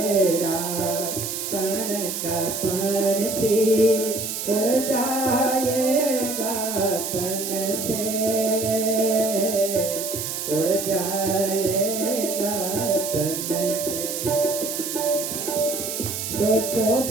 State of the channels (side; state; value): right; noise; hiss, 4 dB below the sound